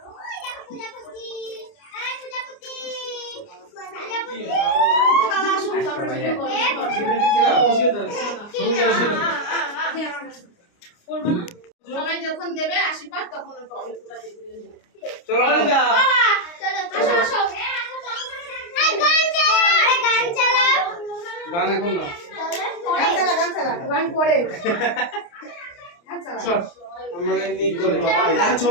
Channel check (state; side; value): late; right; 29 ms